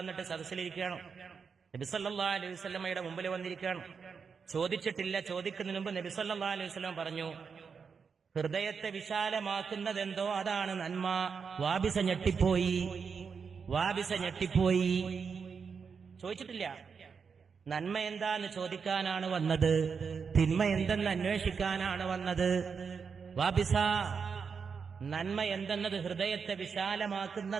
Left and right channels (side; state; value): left; quieter; 5.9 dB